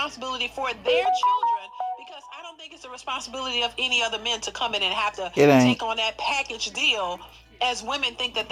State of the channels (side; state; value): both; identical; correlation 1.00